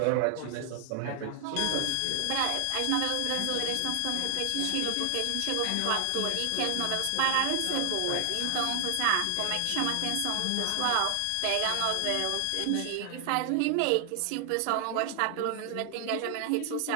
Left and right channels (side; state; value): both; different; correlation 0.00